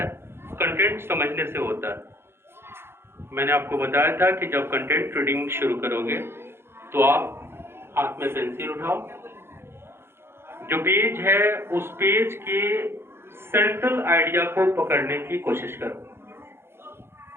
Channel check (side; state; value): left; late; 0.11 ms